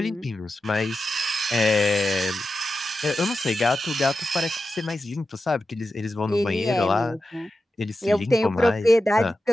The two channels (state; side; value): normal; both; correlation 0.91